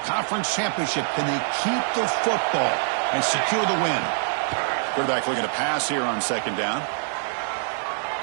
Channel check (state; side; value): silent; left; digital silence